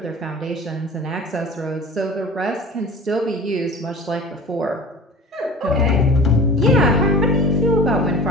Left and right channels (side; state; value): both; normal; correlation 0.40